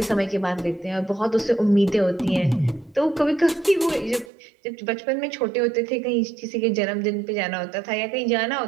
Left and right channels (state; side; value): drops out; left; at 4.3 s